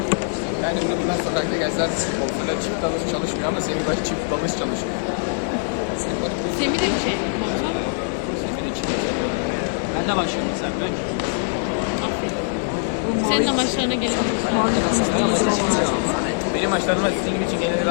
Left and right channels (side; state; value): right; silent; digital silence